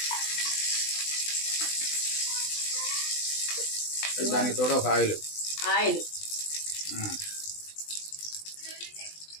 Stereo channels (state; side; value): late; right; 20 ms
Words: దానికి తోడు ఒక ఆయిల్